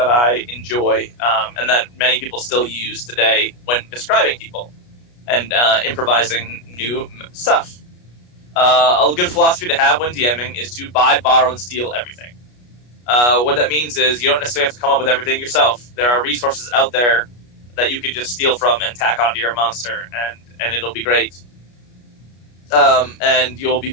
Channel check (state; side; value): late; right; 33 ms